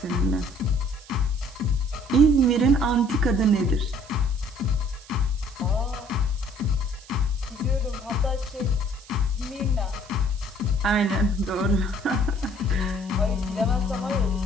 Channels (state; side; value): noise; right; hiss, 22 dB below the sound